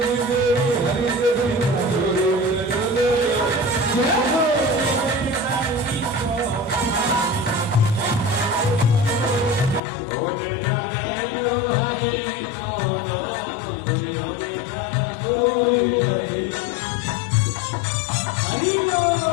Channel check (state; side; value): drops out; right; at 9.8 s